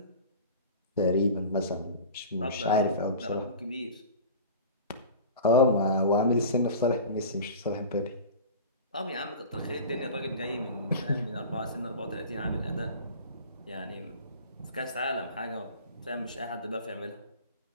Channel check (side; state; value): both; inverted; correlation -0.36